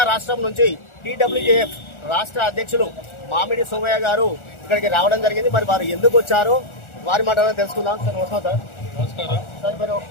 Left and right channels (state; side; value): late; right; 1.4 ms